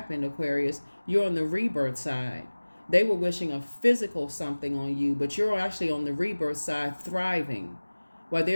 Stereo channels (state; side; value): inverted; both; correlation -1.00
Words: Aquarius. You're on the rebirth side. They were wishing a physical something on you, but you're actually on the rebirth side thriving while